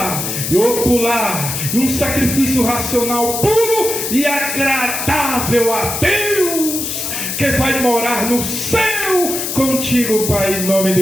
e ocular, e um sacrifício racional puro e agradável a Deus, que vai morar no céu contigo, Pai, em nome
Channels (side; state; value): left; noise; hiss, 3 dB below the sound